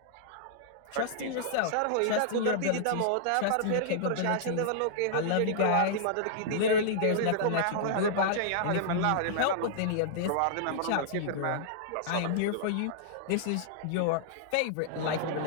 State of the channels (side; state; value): both; different; correlation -0.01